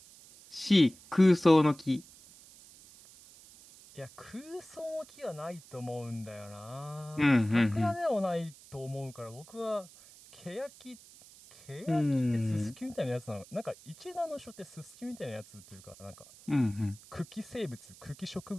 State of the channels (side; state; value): right; noise; hiss, 21 dB below the sound